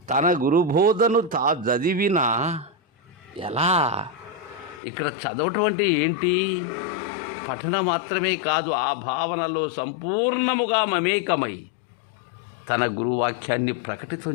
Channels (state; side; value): drops out; right; at 4.8 s